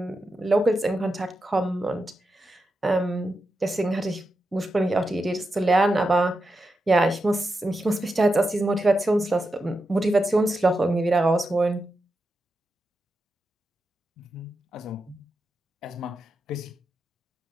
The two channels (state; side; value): normal; both; correlation 0.88